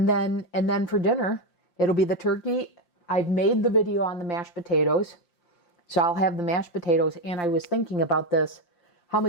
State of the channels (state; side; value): late; right; 5.7 ms